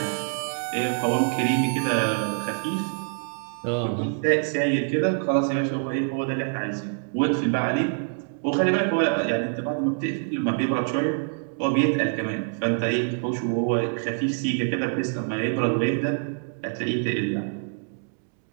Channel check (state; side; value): silent; left; 61 dB below the other